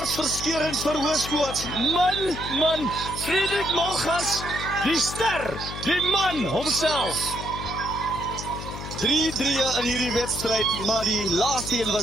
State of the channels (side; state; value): left; noise; hum, 9 dB below the sound